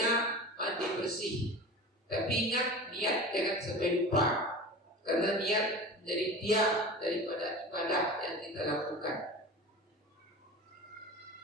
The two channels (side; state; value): both; normal; correlation 0.34